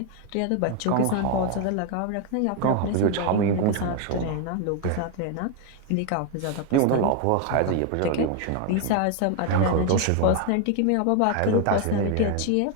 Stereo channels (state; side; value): different; both; correlation 0.01